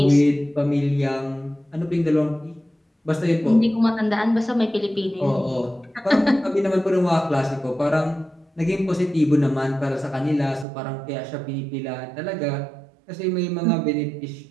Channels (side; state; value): left; drops out; at 10.7 s